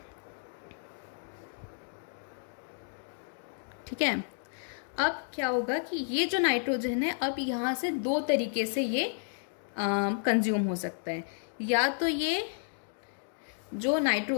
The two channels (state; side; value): silent; right; digital silence